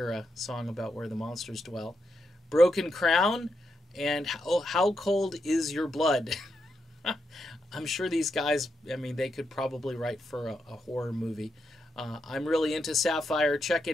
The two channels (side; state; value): both; normal; correlation 0.83